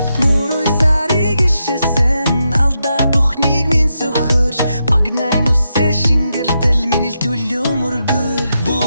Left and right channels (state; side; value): inverted; both; correlation -0.85